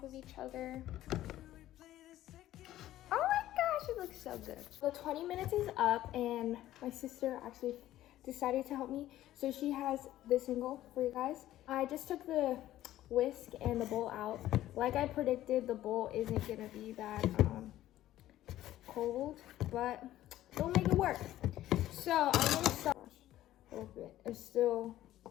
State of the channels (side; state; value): right; quieter; 13.9 dB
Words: of each other. Oh my gosh, it looks so good. The 20 minutes is up and my sister actually decided to help me. So she has this angle for you guys. I just took the whisk and the bowl out. Like I predicted, the bowl isn't gonna be that cold, but we'll make it work. So I'm gonna start a little bit. It's still